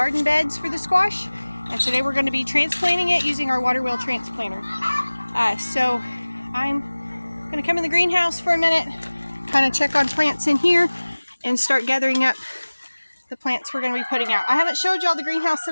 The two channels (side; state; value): both; inverted; correlation -1.00